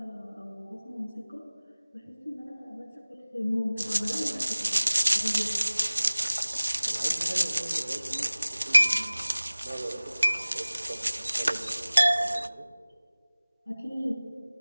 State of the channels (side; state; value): both; inverted; correlation -0.99